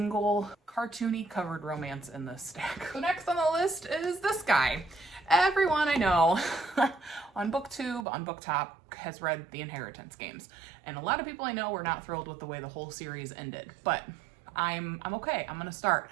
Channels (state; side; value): drops out; left; at 8.1 s